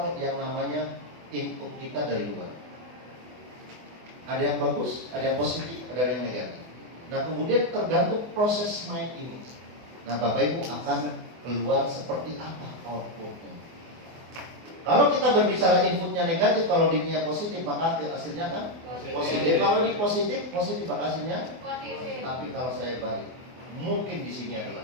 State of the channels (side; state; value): left; late; 24 ms